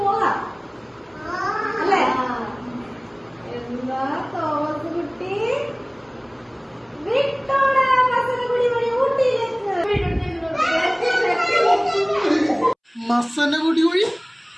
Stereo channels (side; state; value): both; identical; correlation 1.00